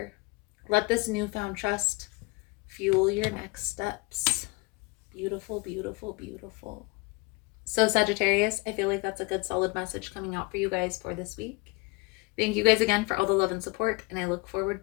Let this newfound trust fuel your next steps. Beautiful, beautiful, beautiful. So Sagittarius, I feel like that's a good solid message coming out for you guys for this week. Thank you guys again for all the love and support, and I look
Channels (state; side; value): quieter; right; 25.6 dB